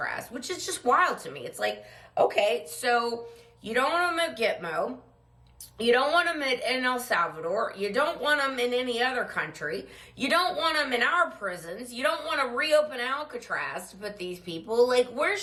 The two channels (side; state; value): both; identical; correlation 1.00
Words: which is just wild to me. It's like, okay, so you don't want them at Gitmo, you don't want them in El Salvador, you don't want them in any other country, you don't want them in our prisons, you don't want to reopen Alcatraz to put these people, like, where